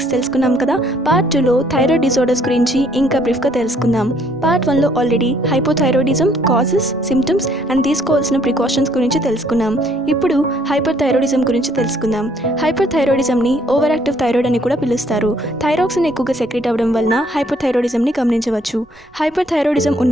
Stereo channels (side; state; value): right; noise; rumble, 29 dB below the sound